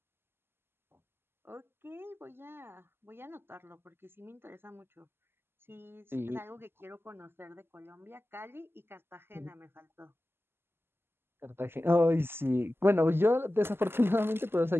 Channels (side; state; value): left; late; 0.11 ms